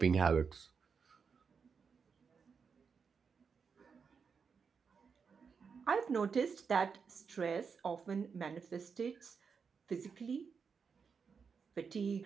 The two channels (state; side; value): quieter; left; 5.8 dB